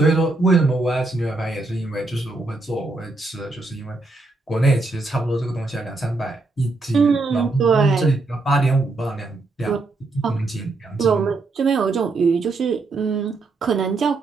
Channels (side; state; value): left; quieter; 3.4 dB